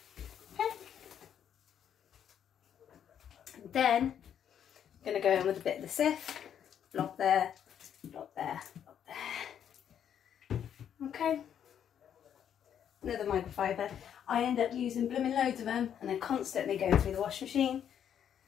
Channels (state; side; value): quieter; right; 9.1 dB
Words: Then I'm going to go in with a bit of the Ciff, blob there, blob there, blob there. Okay, another microfiber. I end up using blooming loads of them, and they're constantly going through the washing machine,